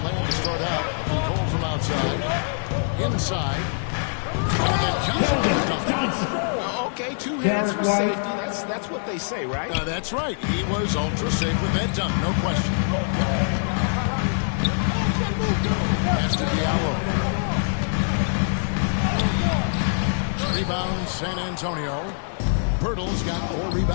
land to start out. Goal from outside. Inside. And then Johnson. Okay, 2 hands for safety. That's what they say, right? That's right. He was ultra safe with that dunk, no question. Pass to Diallo. Rebound, San Antonio. Pirtle's got 4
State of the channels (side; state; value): right; silent; 56 dB below the other